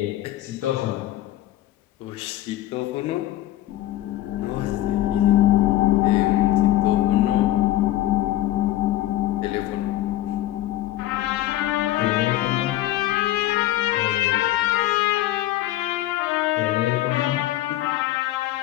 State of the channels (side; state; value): right; quieter; 14.7 dB